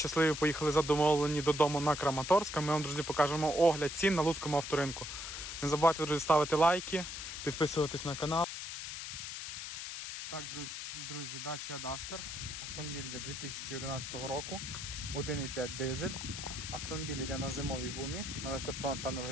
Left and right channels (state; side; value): noise; left; hiss, 7 dB below the sound